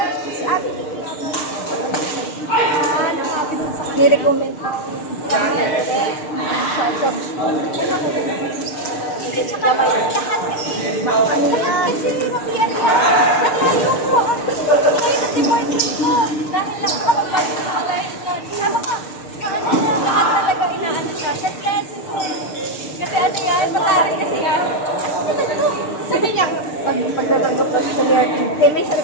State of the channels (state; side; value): late; right; 6.6 ms